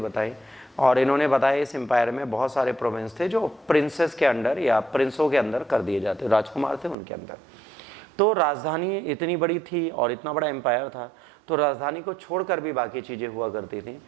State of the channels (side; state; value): left; drops out; at 7.0 s